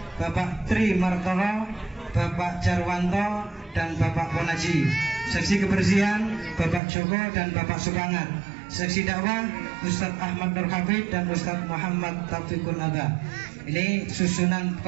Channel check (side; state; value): left; drops out; at 6.8 s